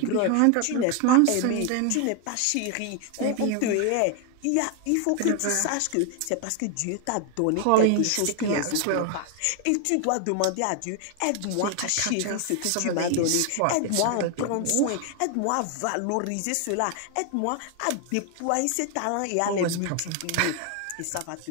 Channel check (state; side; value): different; both; correlation 0.00